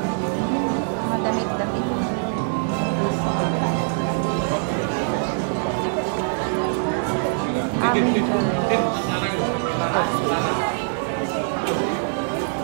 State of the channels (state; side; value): silent; left; digital silence